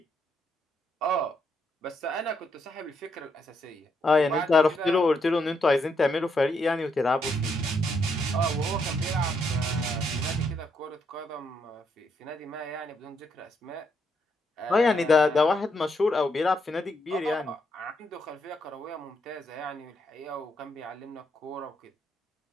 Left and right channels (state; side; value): normal; both; correlation 0.77